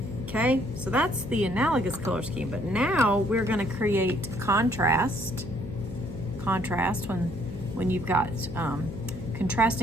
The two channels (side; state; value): left; noise; hum, 11 dB below the sound